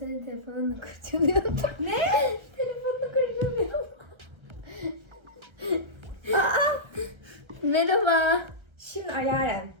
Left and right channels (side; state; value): left; late; 1.3 ms